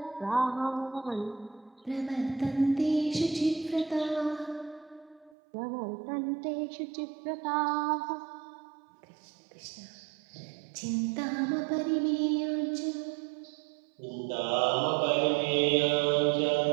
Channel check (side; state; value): left; drops out; at 5.4 s